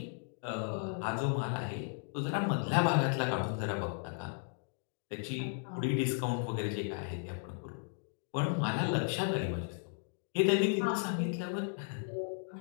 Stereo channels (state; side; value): silent; right; 54 dB below the other